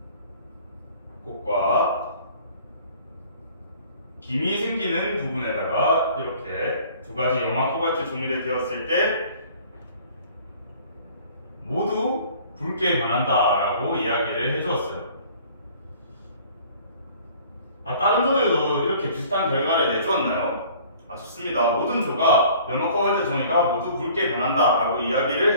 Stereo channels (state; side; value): inverted; both; correlation -0.51